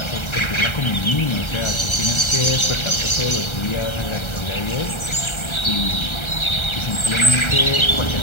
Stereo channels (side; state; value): right; late; 1.3 ms